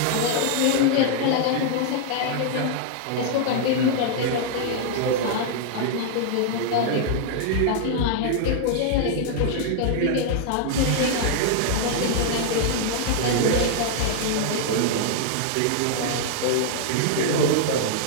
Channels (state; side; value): different; both; correlation -0.01